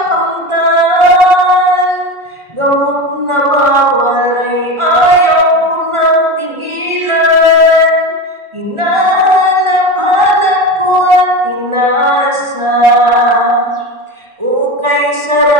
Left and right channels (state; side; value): late; left; 1.4 ms